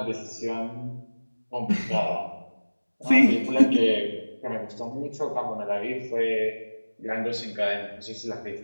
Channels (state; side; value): inverted; both; correlation -1.00